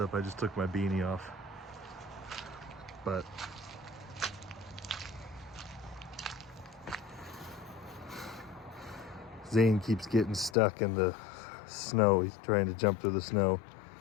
I just took my beanie off. But Zane keeps getting stuck in the snow. He's trying to jump through the snow.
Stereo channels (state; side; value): drops out; right; at 10.6 s